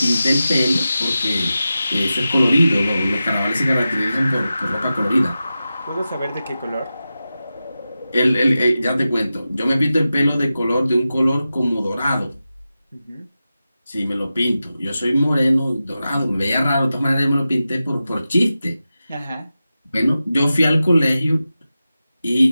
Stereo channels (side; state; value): both; inverted; correlation -0.93